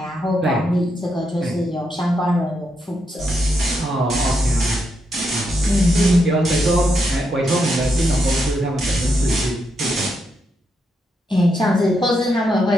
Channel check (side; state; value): both; normal; correlation 0.81